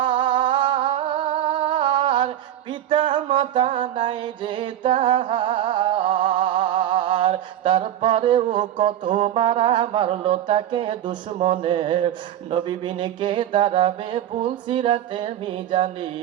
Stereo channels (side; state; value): left; quieter; 11.5 dB